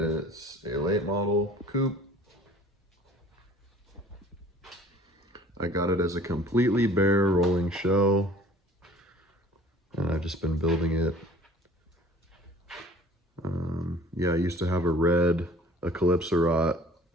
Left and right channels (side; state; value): both; normal; correlation 0.49